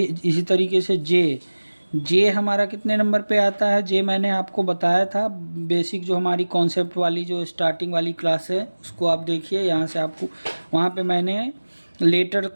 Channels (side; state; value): both; inverted; correlation -1.00